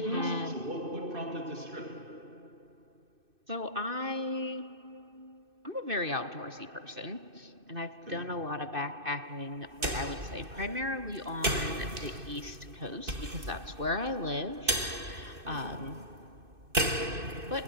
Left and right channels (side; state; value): left; late; 2.6 ms